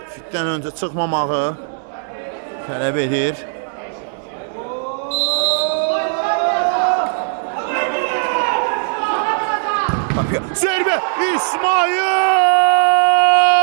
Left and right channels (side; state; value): left; silent; digital silence